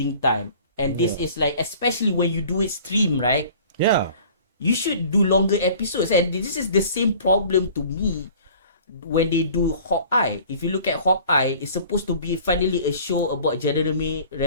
time. And this is like, especially when you do it stream, right? Yeah. You should do longer episodes. And this is the same problem to me when they do Hawkeye. If you look at Hawkeye, it's supposed to be finally a show about Jeremy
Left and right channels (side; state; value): both; inverted; correlation -0.48